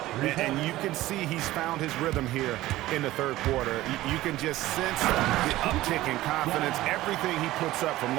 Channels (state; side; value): quieter; left; 16.4 dB